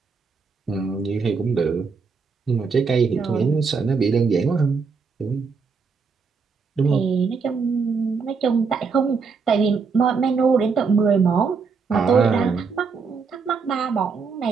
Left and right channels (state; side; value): quieter; left; 5.1 dB